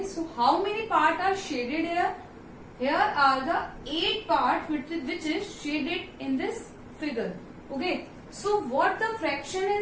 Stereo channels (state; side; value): identical; both; correlation 1.00